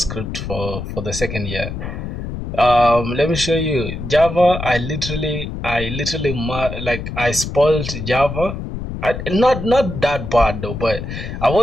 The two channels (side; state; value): left; noise; rumble, 7 dB below the sound